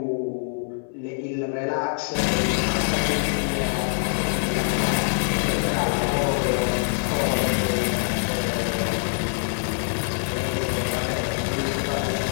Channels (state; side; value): silent; right; digital silence